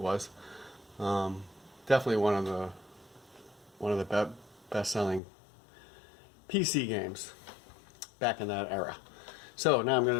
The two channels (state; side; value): drops out; right; at 5.2 s